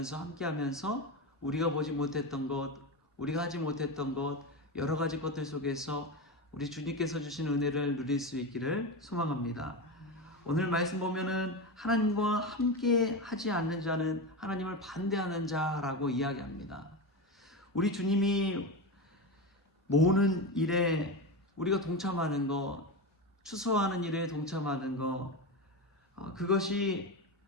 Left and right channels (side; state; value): both; normal; correlation 0.19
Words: 함께하면서 우리가 보지 못했던 것, 우리가 하지 못했던 것, 여러 가지 것들 속에서 우리 주님께서 주신 은혜를 누릴 수 있기를 소망합니다. 오늘 말씀 보면은 하나님과 함께 하지 않는 자는 하나님을 반대하는 자라고 이야기합니다. 우리 주님이 모으는 일에 우리가 동참하는 것, 추수하는 일에 동참하는 것, 그것이